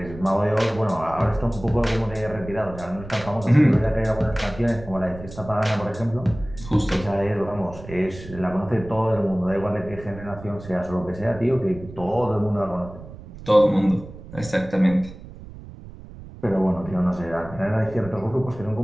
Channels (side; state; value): right; noise; rumble, 15 dB below the sound